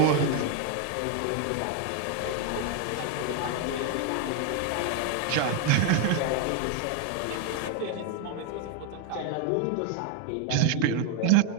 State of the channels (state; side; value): different; both; correlation 0.01